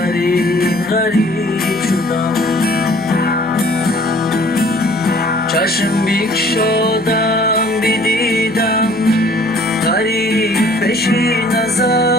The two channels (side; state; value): right; noise; hum, 21 dB below the sound